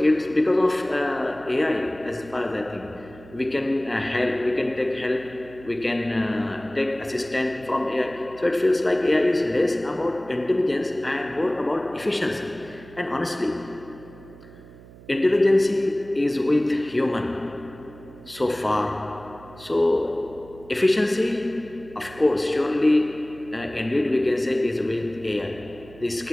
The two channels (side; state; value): right; noise; hum, 20 dB below the sound